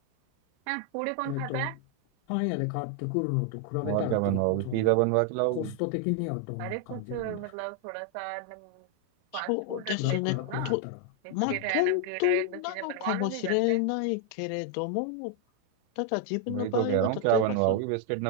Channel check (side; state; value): both; different; correlation 0.00